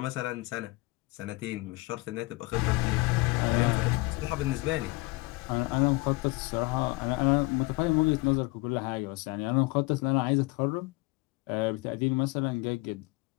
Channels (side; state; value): right; quieter; 23.4 dB